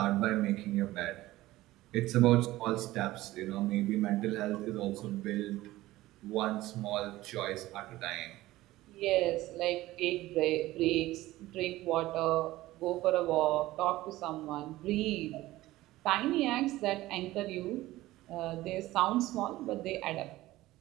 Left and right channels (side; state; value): left; quieter; 17.1 dB